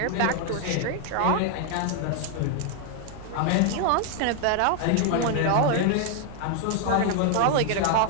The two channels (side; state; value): both; different; correlation 0.00